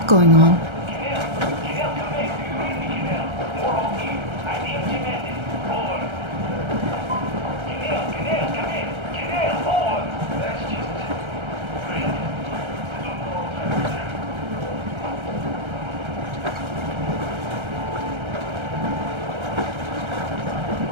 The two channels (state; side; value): late; left; 1.3 ms